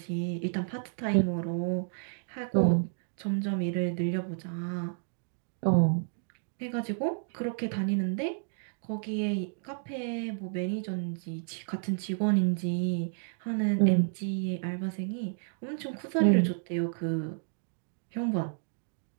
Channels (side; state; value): left; silent; digital silence